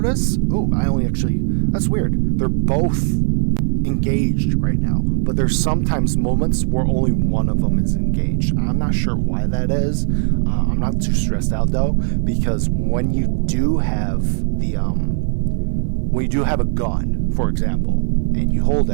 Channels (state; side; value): silent; left; digital silence